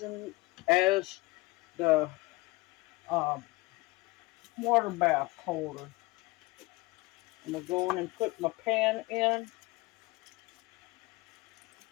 as the uh, water bath holder. I'm going to go in and put my pan in.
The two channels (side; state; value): right; quieter; 22.6 dB